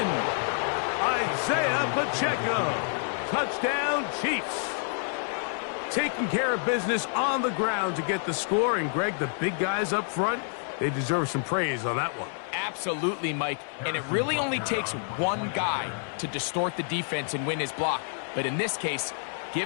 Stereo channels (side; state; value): right; silent; 59 dB below the other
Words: I'd Isaiah Pacheco. Touchdown, Chiefs. Taking care of business on the ground to get the score. And, Greg, the big guys up front, they deserve some praise on that one. Absolutely, Mike. And it really only takes one guy to distort the defense and win his block. But in this case,